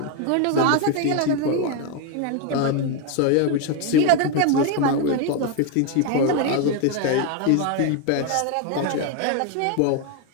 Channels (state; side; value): different; both; correlation 0.02